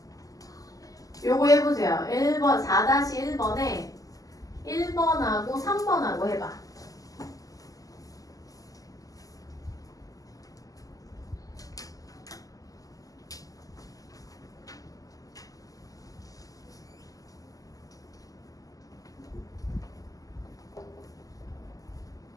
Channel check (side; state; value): right; late; 0.17 ms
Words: 요거 해보세요. 1번 4-1번에 1번하고 3번하고 해봐.